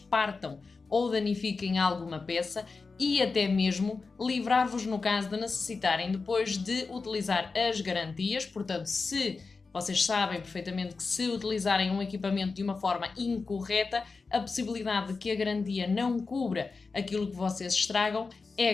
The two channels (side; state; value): right; quieter; 4.3 dB